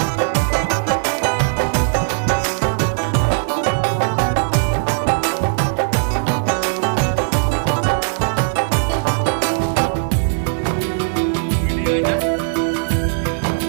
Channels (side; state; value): left; silent; 67 dB below the other